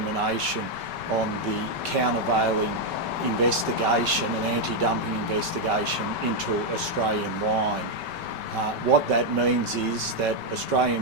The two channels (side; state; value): left; late; 5.2 ms